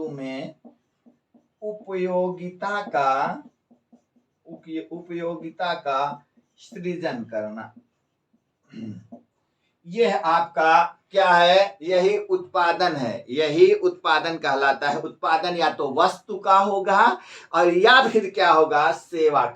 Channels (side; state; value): both; identical; correlation 1.00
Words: में उपयोगिता का सृजन करना, यह आपका क्या है? यही उत्पादन है। यही उत्पादन कहलाता है। उत्पादन या तो वस्तु का होगा और या फिर क्या होगा? सेवा